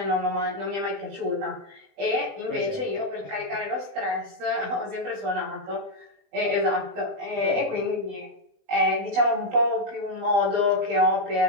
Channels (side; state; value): left; late; 20 ms